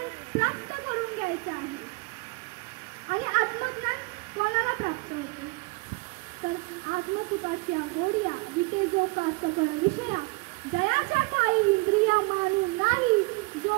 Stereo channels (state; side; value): quieter; left; 28.1 dB